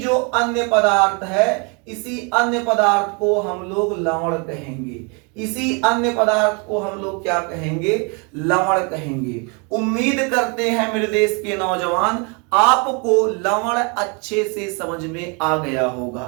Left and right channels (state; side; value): quieter; left; 33.6 dB